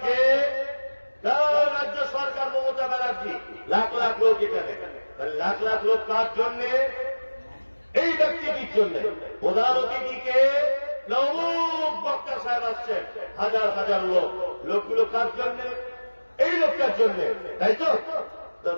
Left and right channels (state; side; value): inverted; both; correlation -1.00